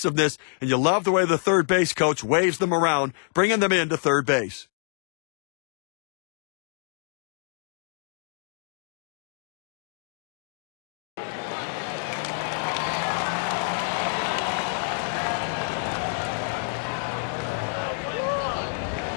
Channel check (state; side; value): silent; right; digital silence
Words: And you love the way the third base coach waves them around, bringing them into third base.